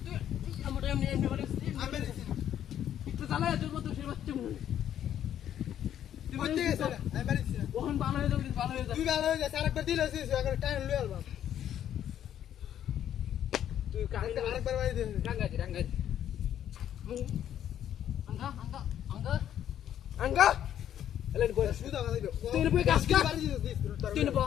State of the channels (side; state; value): right; quieter; 10.5 dB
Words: তুই আমার এমনি বাড়ি আমি বাড়ি দিছি একটু জ্বালা তোর মত সে বাচ্চা মনে তুই কই থেকে গেছে আমি বাড়ি দিছি ওখান ভালো হয়ে যাবে তুই ভালো হয়ে যা আরেকবার দিলে আছে আরেকবার টাইম লই আলবা তুই আরেকবার বাড়ি দে রাঙ্গাজি আঙ্গা এলেন কই সুদা বাড়ি দে তুই বই কাজ কা তুই